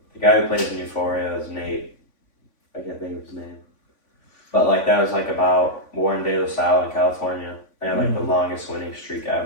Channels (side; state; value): right; late; 3.5 ms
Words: guy who plays in Euphoria is Nate. I can't think of his name. But like that was like about Warren De La Salle in California. They had like the longest winning streak